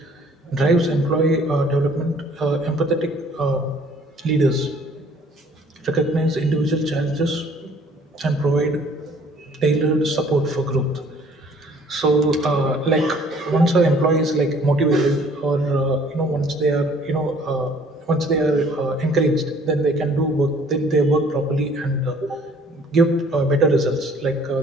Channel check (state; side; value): normal; both; correlation 0.57